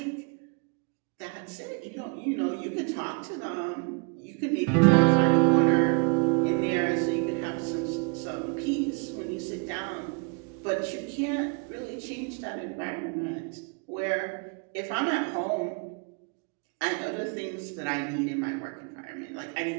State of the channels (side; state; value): left; quieter; 35.7 dB